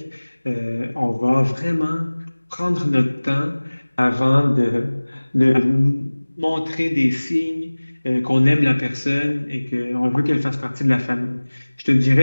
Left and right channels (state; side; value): inverted; both; correlation -1.00